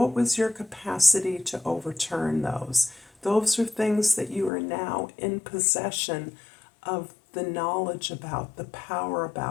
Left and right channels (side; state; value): right; drops out; at 4.5 s